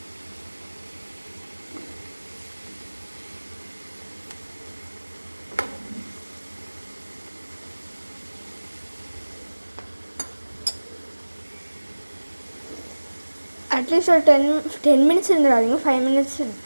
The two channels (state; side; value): inverted; both; correlation -1.00